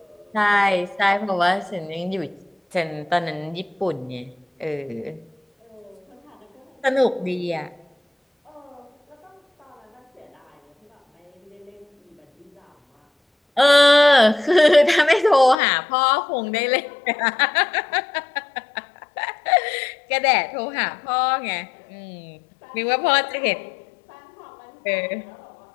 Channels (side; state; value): right; drops out; at 15.6 s